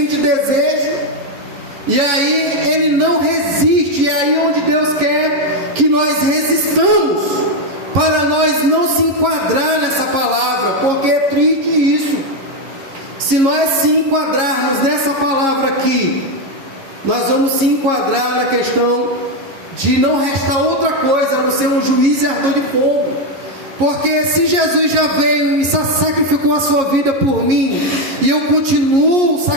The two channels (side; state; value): left; late; 11 ms